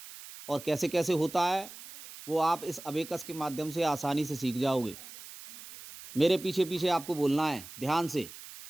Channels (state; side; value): noise; right; hiss, 15 dB below the sound